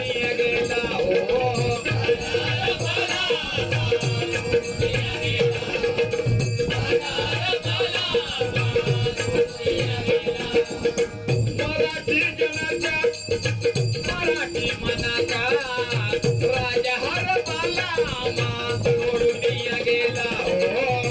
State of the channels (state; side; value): identical; both; correlation 1.00